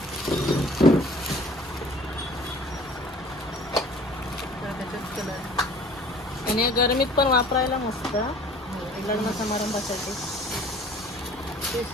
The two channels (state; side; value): normal; both; correlation 0.49